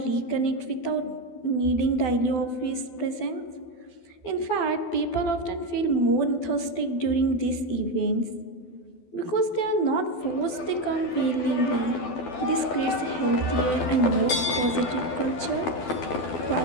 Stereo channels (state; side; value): late; right; 12 ms